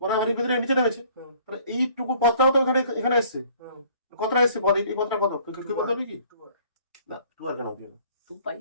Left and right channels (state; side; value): inverted; both; correlation -0.56